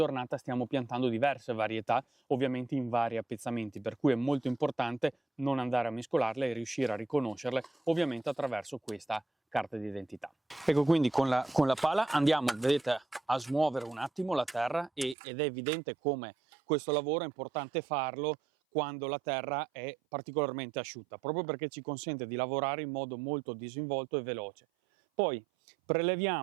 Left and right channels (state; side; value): drops out; left; at 15.2 s